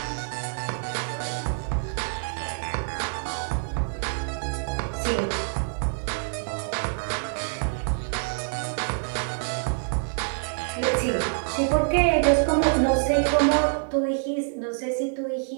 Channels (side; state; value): left; silent; 61 dB below the other